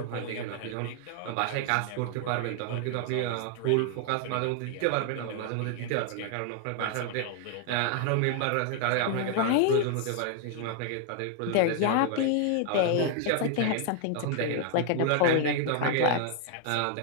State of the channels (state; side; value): different; both; correlation 0.00